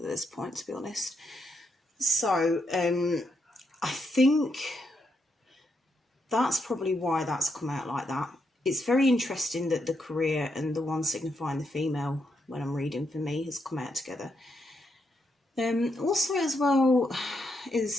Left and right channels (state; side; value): normal; both; correlation 0.80